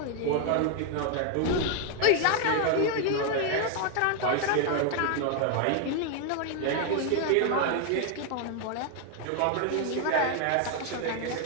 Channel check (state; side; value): different; both; correlation 0.00